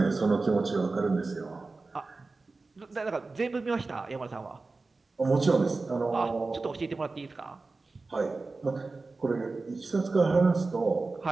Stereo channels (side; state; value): left; quieter; 3.7 dB